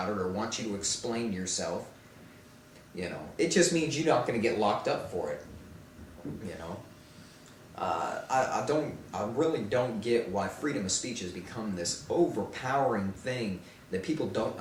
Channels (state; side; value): identical; both; correlation 1.00